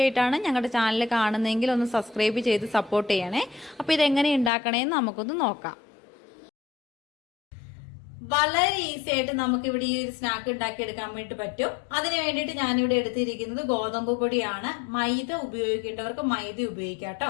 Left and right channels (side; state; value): right; drops out; at 4.5 s